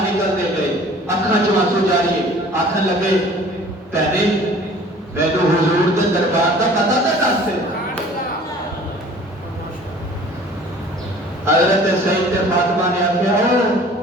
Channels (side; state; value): both; normal; correlation 0.49